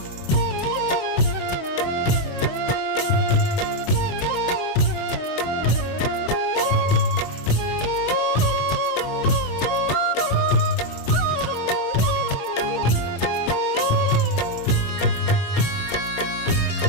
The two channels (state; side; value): late; right; 22 ms